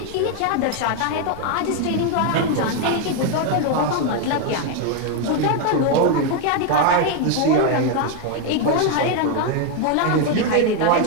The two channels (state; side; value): different; both; correlation 0.01